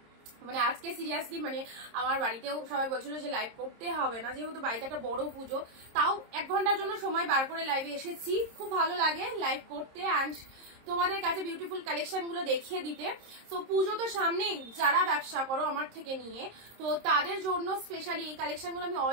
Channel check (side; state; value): left; late; 26 ms